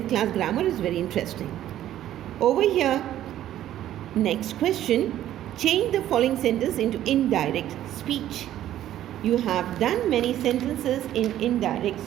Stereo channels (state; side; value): quieter; left; 12.4 dB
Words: class grammar is very interesting. Over here, next question. Change the following sentence into indirect speech. You have done many sentences in indirect